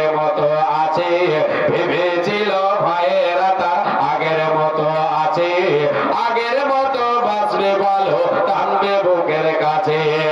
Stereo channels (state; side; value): identical; both; correlation 1.00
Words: মতো আছে, ভেবেছিল ভাইয়েরা তার আগের মতো আছে, আগের মতো বাঁচবে ভালো টানবে বুকের কাছে।